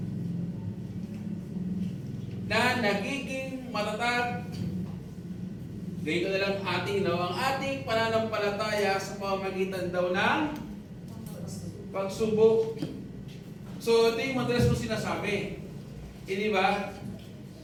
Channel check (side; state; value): both; identical; correlation 1.00